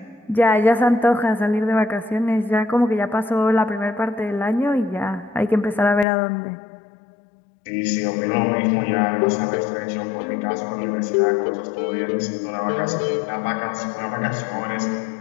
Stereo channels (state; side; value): drops out; right; at 6.1 s